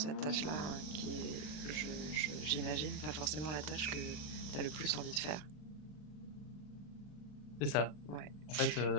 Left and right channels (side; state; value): right; late; 40 ms